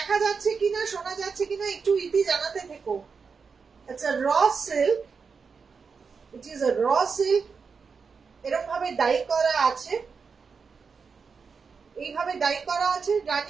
যাচ্ছে কিনা শোনা যাচ্ছে কিনা একটু ইতি জানাতে থেকো। It's a raw silk. It is a raw silk. এরকম ভাবে ডাই করা আছে, এইভাবে ডাই করা আছে,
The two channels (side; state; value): left; quieter; 5.4 dB